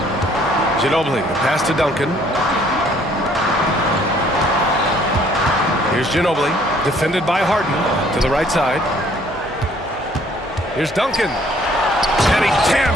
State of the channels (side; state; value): both; normal; correlation 0.60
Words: Ginobili, the pass to Duncan. Here's Ginobili, defended by Harden to the right side. Here's Duncan. And he